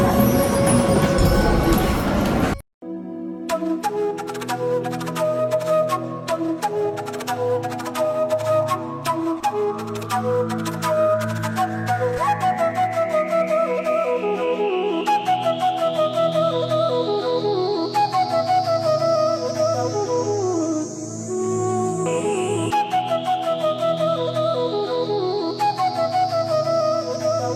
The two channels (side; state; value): both; identical; correlation 1.00